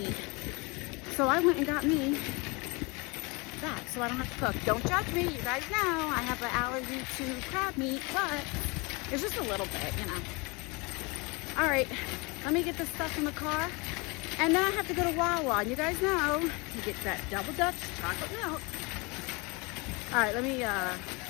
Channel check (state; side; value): quieter; right; 27.8 dB